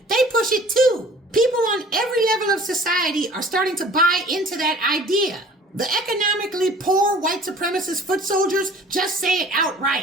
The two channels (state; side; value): normal; both; correlation 0.48